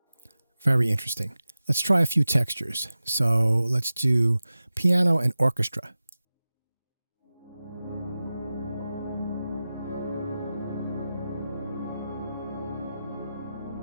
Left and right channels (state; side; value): inverted; both; correlation -0.94